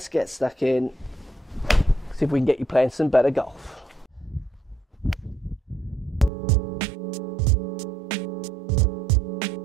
get stuck in, see if we can get you playing some better golf.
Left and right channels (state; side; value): drops out; left; at 6.3 s